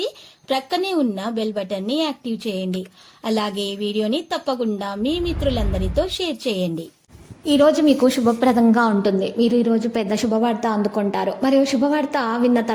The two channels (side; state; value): both; identical; correlation 1.00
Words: ప్రక్కనే ఉన్న బెల్ బటన్ ని యాక్టివ్ చేయండి. అలాగే ఈ వీడియోని తప్పకుండా మీ మిత్రులందరితో షేర్ చేయండి. ఈ రోజు మీకు శుభప్రదంగా ఉంటుంది. మీరు ఈ రోజు పెద్ద శుభవార్త అందుకుంటారు. మరియు శుభవార్త విన్న